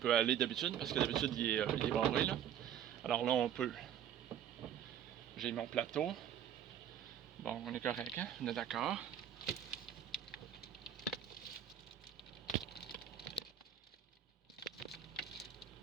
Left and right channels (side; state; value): left; quieter; 9.7 dB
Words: aller d'habitude, parce que d'habitude, il est barré, là. Alors là, on peut. J'ai mon plateau. Bon, on est correct, hein? On est d'accord.